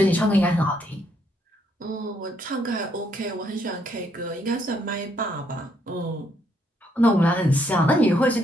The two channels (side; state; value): both; normal; correlation 0.72